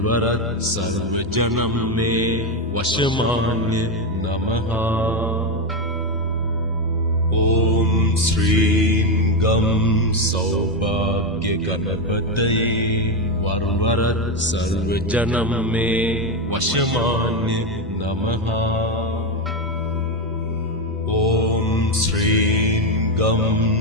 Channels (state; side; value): normal; both; correlation 0.09